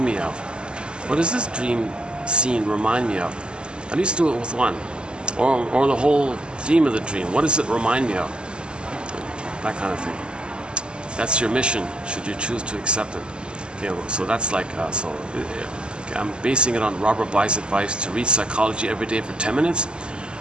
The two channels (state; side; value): late; left; 0.050 ms